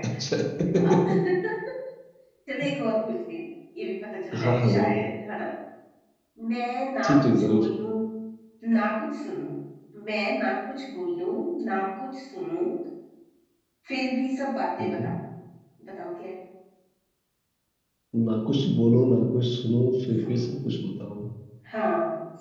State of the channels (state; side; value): identical; both; correlation 1.00